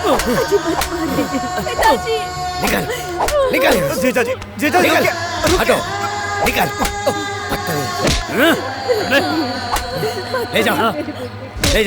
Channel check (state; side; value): identical; both; correlation 1.00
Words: पिताजी, निकल। जीजा जी, निकल। हटो, निकल। ले